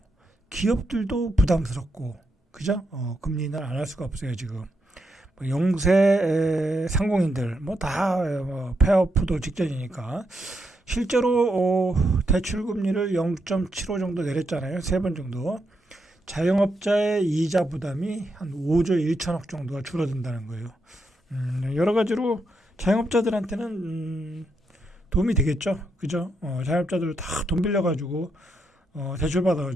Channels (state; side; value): normal; both; correlation 0.81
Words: 기업들도 부담스럽고 그죠? 금리 인하를 안 할 수가 없어요 지금. 뭐 영세 상공인들 뭐 다 폐업도 직전이니까 실제로 대출 금리를 0.75 정도 내렸잖아요. 3번 정도. 자영업자의 이자 부담이 한 5조 1천억 정도가 줄어든다는 거예요. 여러 가지로 자영업자들한테는 도움이 되겠죠. 그죠? 자영업자들 다 돈 빌려가지고 대출받아